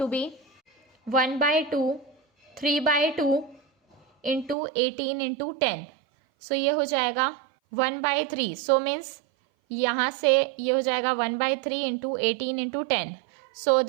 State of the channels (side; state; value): left; drops out; at 4.5 s